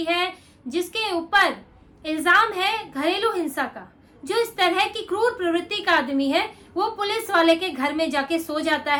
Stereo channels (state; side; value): identical; both; correlation 1.00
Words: है, जिसके ऊपर इल्जाम है घरेलू हिंसा का, जो इस तरह की क्रूर प्रवृत्ति का आदमी है, वो पुलिस वाले के घर में जाके सो जाता